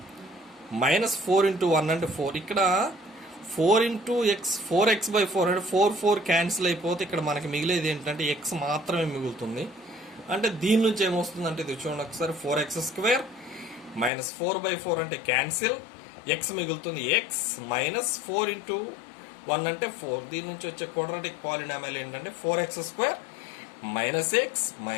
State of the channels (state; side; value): drops out; right; at 14.1 s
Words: మైనస్ 4 ఇంటూ 1 అంటే 4. ఇక్కడ 4 ఇంటూ ఎక్స్ 4x/4 అంటే 4 క్యాన్సిల్ అయిపోతే ఇక్కడ మనకి మిగిలేది ఏంటంటే ఎక్స్ మాత్రమే మిగులుతుంది. అంటే దీని నుంచి ఏమొస్తుంది అంటే ఇది చూడండి ఒకసారి, 4x² మైనస్ 4/4 అంటే క్యాన్సిల్, ఎక్స్ మిగులుతుంది ఎక్స్, మైనస్ 4 ఇంటూ 1 అంటే 4. దీని నుంచి వచ్చే క్వాడ్రాటిక్ పాలినామియల్ ఏంటంటే 4x² మైనస్ ఎక్స్